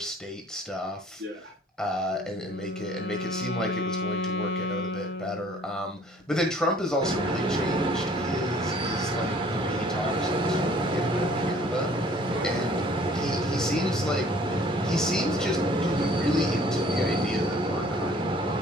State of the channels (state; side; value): normal; both; correlation 0.55